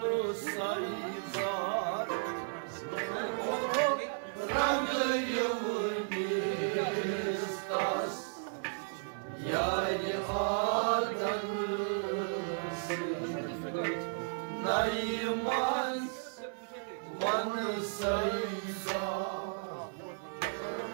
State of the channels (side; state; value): left; silent; 55 dB below the other